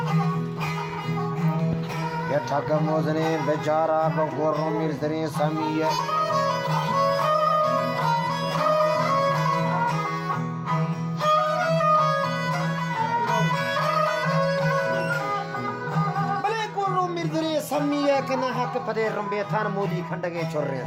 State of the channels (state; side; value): identical; both; correlation 1.00